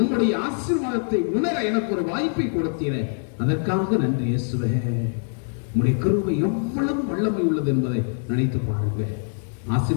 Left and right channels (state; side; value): silent; right; 63 dB below the other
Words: ஆசீர்வாதத்தை உணர எனக்கு ஒரு வாய்ப்பை கொடுத்தீரே அதற்காக நன்றி இயேசுவே. உம்முடைய கிருபை எவ்வளவு வல்லமை உள்ளது என்பதை நினைத்து பாருங்க.